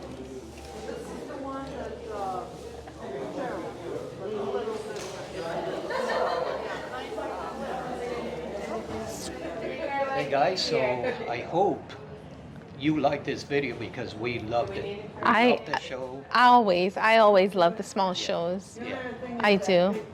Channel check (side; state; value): both; identical; correlation 1.00